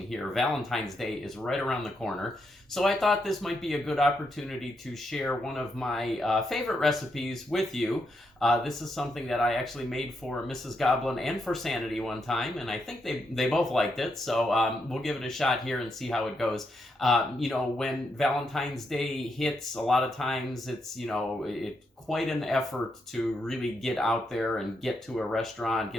here. Valentine's Day is right around the corner, so I thought this might be a good opportunity to share one of my favorite recipes with you. This is something that I actually made for Mrs. Goblin and for Sanity one time, and I think they both liked it, so we'll give it a shot here and see how it goes. You know, when Valentine's Day hits, a lot of times it's, quite an effort to really get out there and get to a restaurant,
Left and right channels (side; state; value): both; normal; correlation 0.81